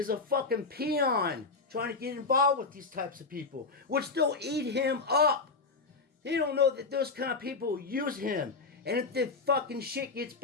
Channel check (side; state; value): right; quieter; 4.2 dB